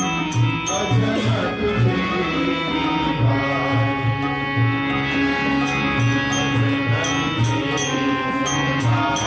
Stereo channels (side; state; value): both; identical; correlation 1.00